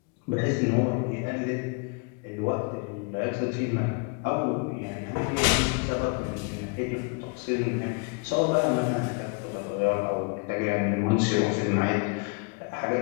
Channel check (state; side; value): quieter; right; 34.2 dB